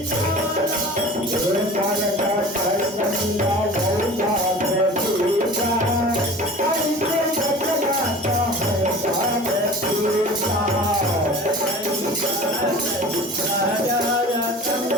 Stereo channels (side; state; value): both; normal; correlation 0.40